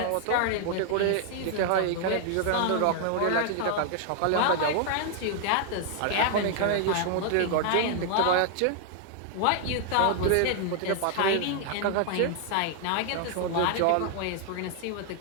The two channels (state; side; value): different; both; correlation 0.00